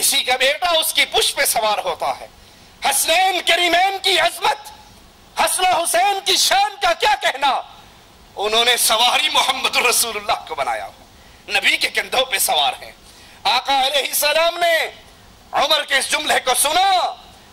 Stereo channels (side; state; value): both; identical; correlation 1.00